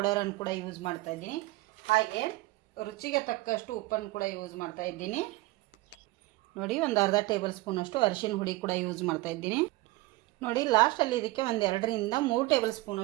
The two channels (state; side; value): quieter; left; 20.1 dB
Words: ಕೂಡ ಯೂಸ್ ಮಾಡ್ತಾಯಿದ್ದೀನಿ. ಹಾಗೆ ರುಚಿಗೆ ತಕ್ಕಷ್ಟು ಉಪ್ಪನ್ನು ಕೂಡ ಯೂಸ್ ಮಾಡ್ತಾಯಿದ್ದೀನಿ. ನೋಡಿ, ಒಂದು ಅರ್ಧ ಟೇಬಲ್ ಸ್ಪೂನಷ್ಟು ಅರಿಶಿನ ಹುಡಿ ಕೂಡ ಯೂಸ್ ಮಾಡ್ತಾಯಿದ್ದೀನಿ. ನೋಡಿ, ಲಾಸ್ಟಲ್ಲಿ ಇದಕ್ಕೆ 2-3 ಟೇಬಲ್